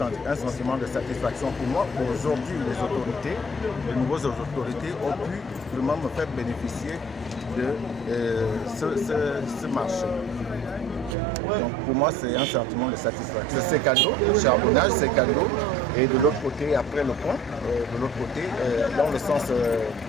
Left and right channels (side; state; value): both; normal; correlation 0.51